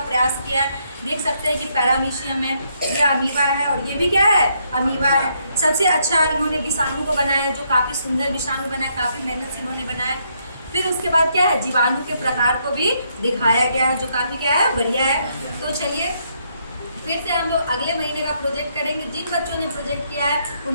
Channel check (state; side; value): inverted; both; correlation -0.74